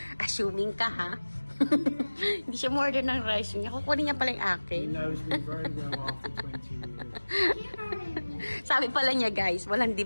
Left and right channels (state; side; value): inverted; both; correlation -1.00